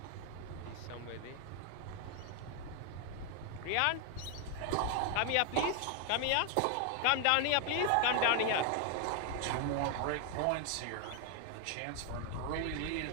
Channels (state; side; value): different; both; correlation 0.00